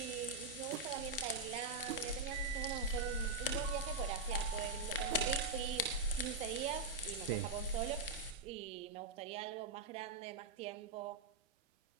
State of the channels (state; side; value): quieter; left; 3.4 dB